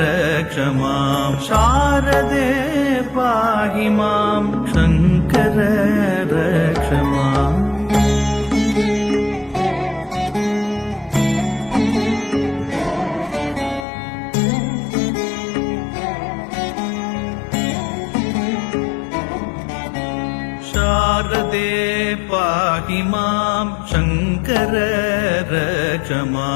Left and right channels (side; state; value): right; drops out; at 13.9 s